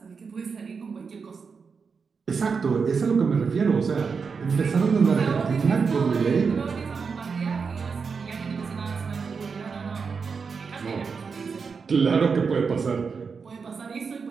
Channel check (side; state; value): left; quieter; 5.4 dB